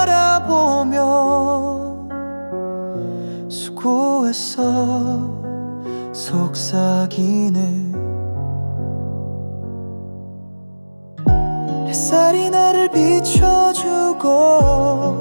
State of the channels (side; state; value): both; inverted; correlation -1.00